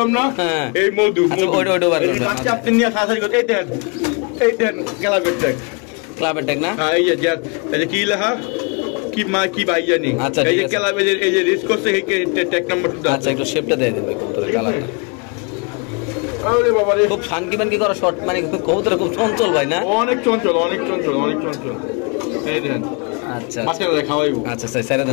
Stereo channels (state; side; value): quieter; right; 33.8 dB